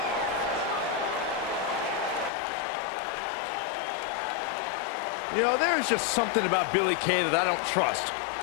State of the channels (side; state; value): right; drops out; at 2.3 s